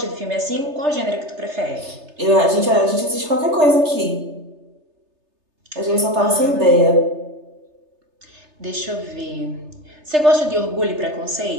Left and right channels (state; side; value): late; left; 3.3 ms